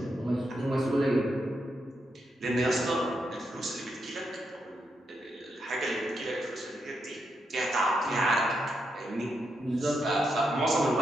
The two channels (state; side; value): normal; both; correlation 0.82